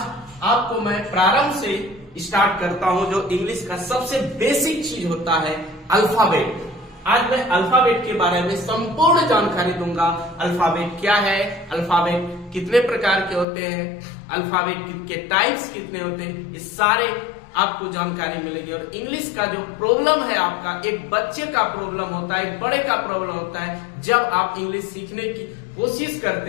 आपको मैं प्रारंभ से स्टार्ट करता हूं। जो इंग्लिश का सबसे बेसिक चीज होता है अल्फाबेट। आज मैं अल्फाबेट के बारे में संपूर्ण जानकारी दूंगा। अल्फाबेट क्या है, अल्फाबेट कितने प्रकार के होते हैं, अल्फाबेट के टाइप्स कितने होते हैं, ये सारे आपको जानकारी मिलेगी। और इंग्लिश का जो प्रॉब्लम है आपका, एक बच्चे का प्रॉब्लम होता है, एक बड़े का प्रॉब्लम होता है। जब आप इंग्लिश सीखने की कोशिश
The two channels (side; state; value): right; drops out; at 13.5 s